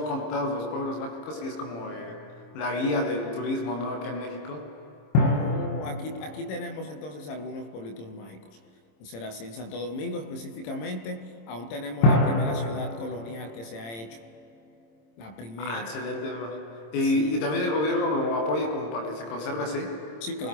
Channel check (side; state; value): right; late; 26 ms